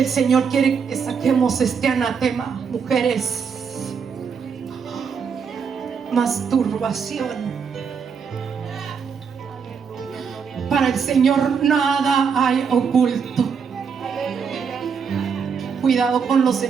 Señor quiere que saquemos este anatema, mujeres. Masturbación. Para el Señor nada hay oculto. Cuidado con los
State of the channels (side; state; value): left; quieter; 6.3 dB